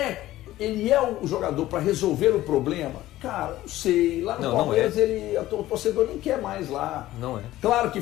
o jogador para resolver o problema? Cara, não sei. Lá no Palmeiras, o torcedor nem quer mais lá. Não é. Claro que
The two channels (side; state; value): right; quieter; 15.2 dB